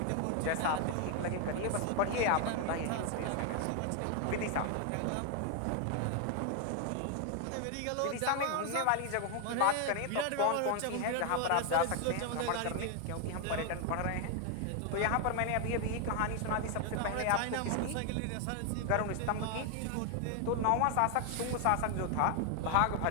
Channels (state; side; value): different; both; correlation 0.00